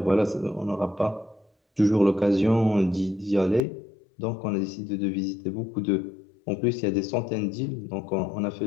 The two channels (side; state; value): right; drops out; at 3.6 s